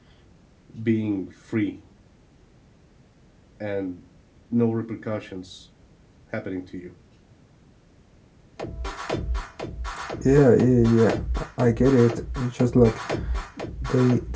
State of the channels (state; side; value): identical; both; correlation 1.00